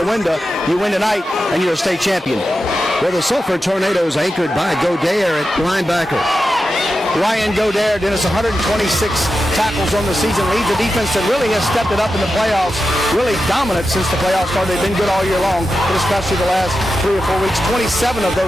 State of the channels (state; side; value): normal; both; correlation 0.90